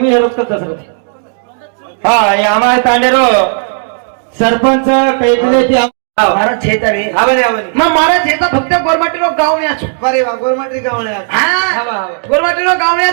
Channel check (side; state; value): left; silent; digital silence